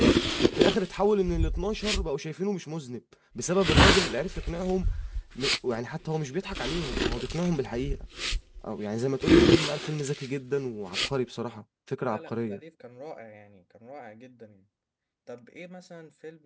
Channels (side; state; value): both; identical; correlation 1.00